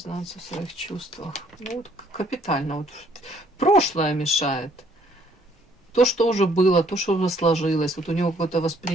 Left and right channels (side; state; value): both; normal; correlation 0.63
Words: в своих чувствах? Ну, вот капитально. Вот прошлое мешает. То, что уже было, то, что уже сложилось. Вот у него какое-то